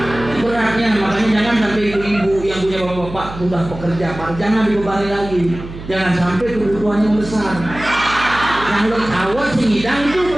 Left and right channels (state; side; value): noise; right; hum, 13 dB below the sound